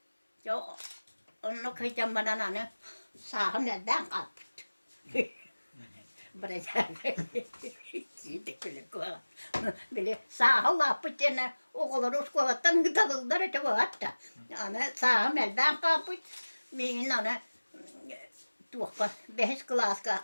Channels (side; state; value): both; inverted; correlation -1.00